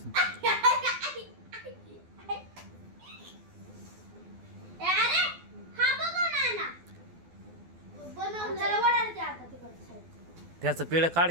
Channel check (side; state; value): left; late; 12 ms